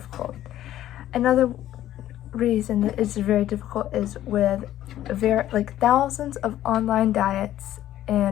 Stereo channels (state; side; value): quieter; right; 12.9 dB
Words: Another reason that it's very difficult is with thousands of online diets